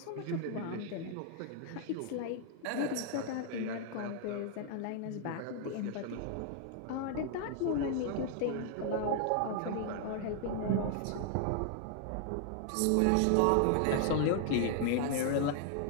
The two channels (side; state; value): both; different; correlation 0.00